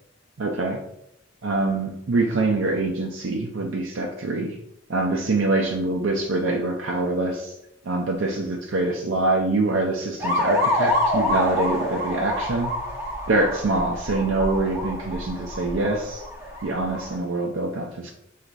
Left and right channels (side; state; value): both; normal; correlation 0.19